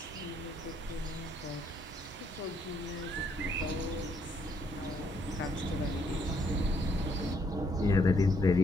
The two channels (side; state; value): both; normal; correlation 0.71